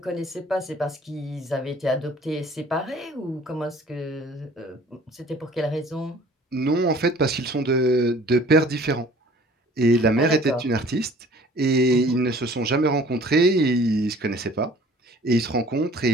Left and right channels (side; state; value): both; normal; correlation 0.51